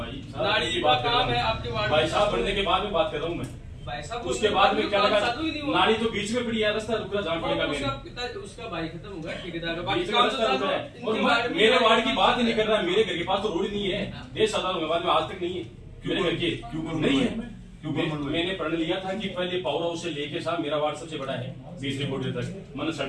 नाली का काम है आपके वार्ड में, भाई साहब बनने के बाद में बात कर रहा हूँ मैं। भाई साहब उसके बाद में क्या लगा, नाली तो बीच में पड़ी है, रास्ता रुकना जान पड़ेगा। उसका भाई खत्म हो गया, ठेकेदार का बीच में रास्ता रुक रहा है। और मेरे वार्ड की बात ही नहीं कर रहा, मेरे घर के पास तो रोड नहीं है। देश आजाद होने के बाद में आज तक नहीं है मेरे घर के। क्यों नहीं है? मैंने प्रण लिया था कि पहले पावर हाउस से लेके साहब मेरा वार्ड सबसे बड़ा है 20 रिपोर्ट तक। मैंने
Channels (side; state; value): both; identical; correlation 1.00